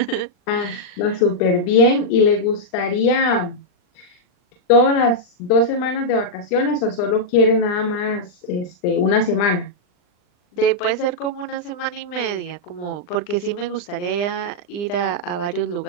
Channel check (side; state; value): right; late; 39 ms